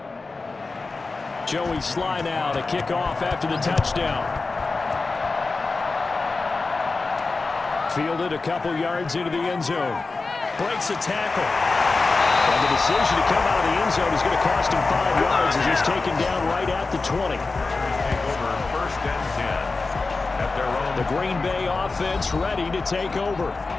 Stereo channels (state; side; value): quieter; right; 3.8 dB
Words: Joey slide out, a kickoff after the touchdown. Fielded a couple yards into the end zone. Breaks a tackle. And the decision to come out of the end zone is going to cost him 5 yards as he's taken down right at the 20. Take over first and 10 at their own. The Green Bay offense ready to take over.